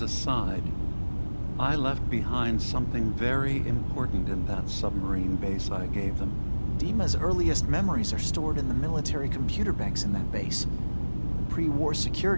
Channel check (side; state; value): both; inverted; correlation -1.00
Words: a side. I left behind something very important in that submarine base I gave them. Dima's earliest memories are stored in the military computer banks in that base. The pre-war